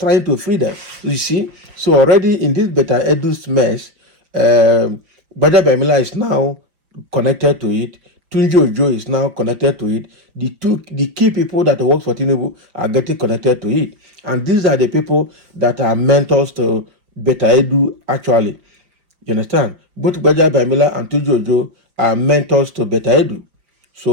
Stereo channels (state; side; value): late; left; 5.5 ms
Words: to free them. You see? So already in this Beta Edu's mess, Gbajabiamila is now connected to it. Tunji Ojo is now connected to it. The key people that work for Tinubu are getting connected to it. And these are the people that are mentors to Beta Edu actually. You understand? Both Gbajabiamila and Tunji Ojo are mentors to Beta Edu.